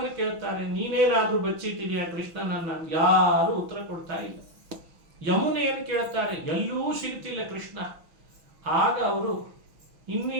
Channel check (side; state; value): left; late; 6.1 ms